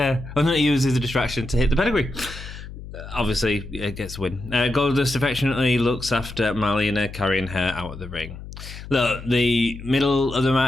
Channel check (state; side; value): noise; left; hum, 13 dB below the sound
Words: going to use as a distraction to hit the pedigree. Obviously, it gets a win. Goldust affectionately looks after Marlena, carrying her out of the ring. Look, the middle of the